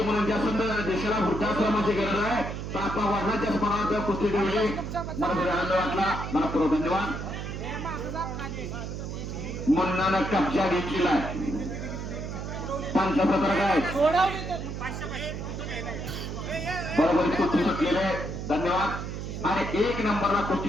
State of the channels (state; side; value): noise; right; hum, 6 dB below the sound